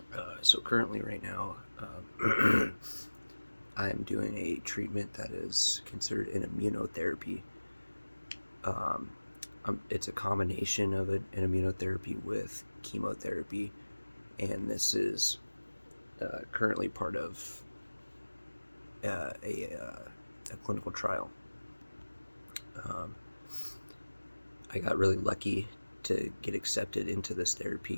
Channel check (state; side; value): inverted; both; correlation -1.00